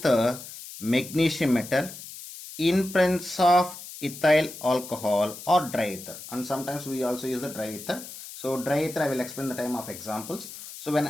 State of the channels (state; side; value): noise; left; hiss, 13 dB below the sound